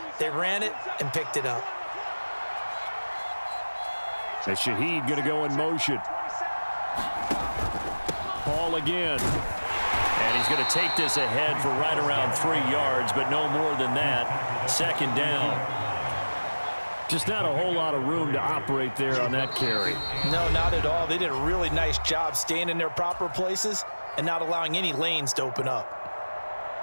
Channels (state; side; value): inverted; both; correlation -1.00